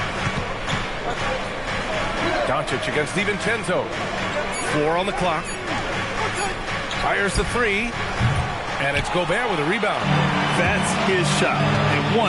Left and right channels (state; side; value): identical; both; correlation 1.00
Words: Doncic against DiVincenzo. 4 on the clock. Fires the 3. And it's Gobert with a rebound. That's his shot. And